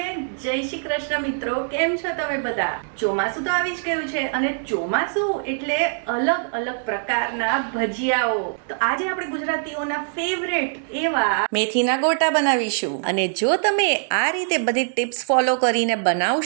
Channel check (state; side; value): silent; left; digital silence